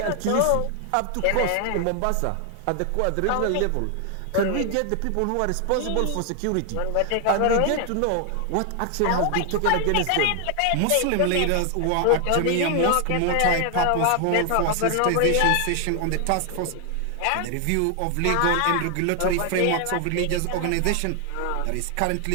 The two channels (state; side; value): different; both; correlation 0.00